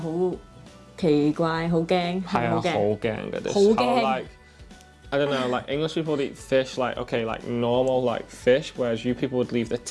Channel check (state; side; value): identical; both; correlation 1.00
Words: 奇怪，好驚，係好驚嘅。好驚。Like I don't know, like English people would eat fish like okay, like normal like fish, whereas you people would leave the